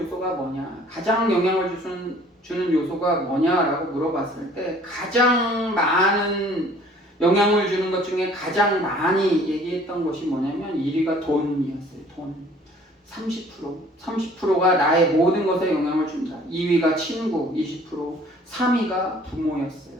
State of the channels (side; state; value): both; normal; correlation 0.54